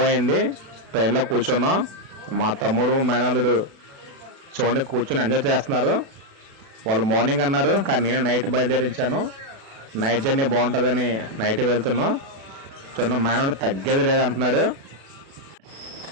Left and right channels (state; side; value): late; left; 36 ms